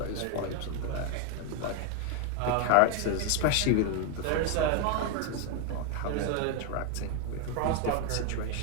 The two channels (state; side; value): different; both; correlation 0.01